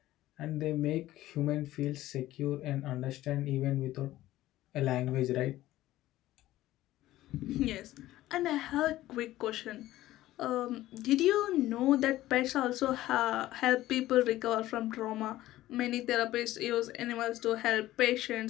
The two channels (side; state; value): right; quieter; 15.4 dB